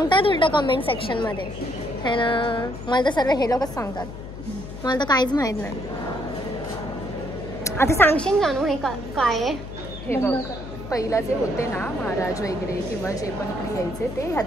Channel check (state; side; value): noise; left; hum, 11 dB below the sound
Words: उलट कमेंट सेक्शन मध्ये है ना. मला तर सर्व हे लोकच सांगतात, मला तर काहीच माहित नाही. आता सांगशील जानू हे काय आहे? हे बघ, पहिला जे होते ना महाराज वगैरे किंवा जे पण इकडे यायचे ते